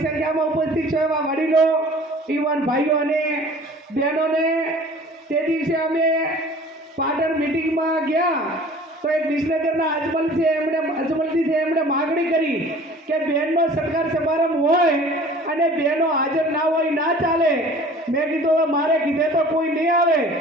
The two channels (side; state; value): both; normal; correlation 0.47